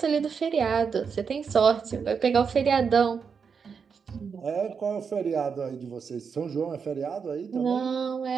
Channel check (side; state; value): left; quieter; 6.1 dB